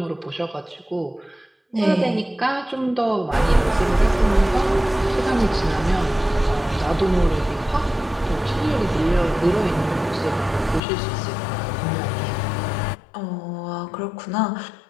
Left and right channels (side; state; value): right; drops out; at 10.8 s